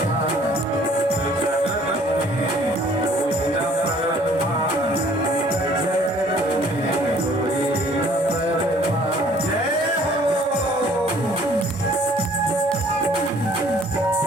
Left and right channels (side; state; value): both; normal; correlation 0.57